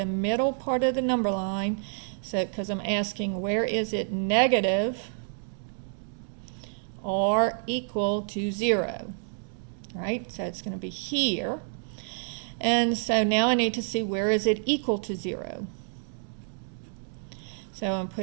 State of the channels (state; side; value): silent; left; digital silence